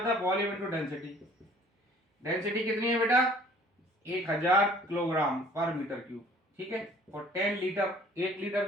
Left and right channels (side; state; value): both; normal; correlation 0.53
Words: है? Volume into density. डेंसिटी कितनी है बेटा? 1000 किलोग्राम पर मीटर क्यूब, ठीक है। और 10 लीटर, 1 लीटर